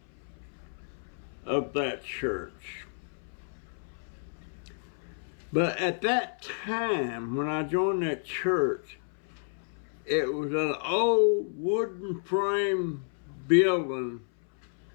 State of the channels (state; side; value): silent; right; 57 dB below the other